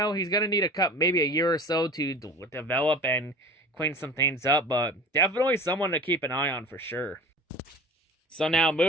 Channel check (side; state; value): both; normal; correlation 0.39